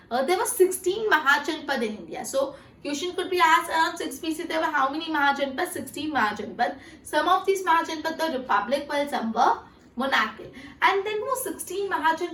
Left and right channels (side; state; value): both; identical; correlation 1.00